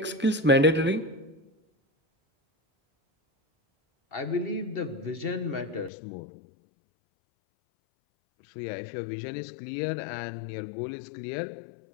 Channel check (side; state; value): right; drops out; at 5.9 s